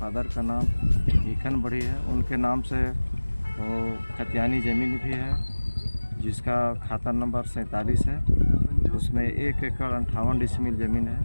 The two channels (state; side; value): inverted; both; correlation -1.00